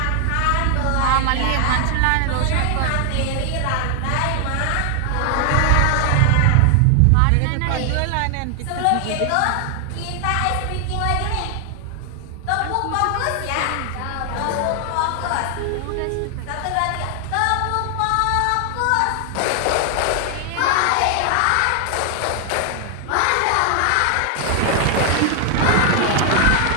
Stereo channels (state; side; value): different; both; correlation 0.00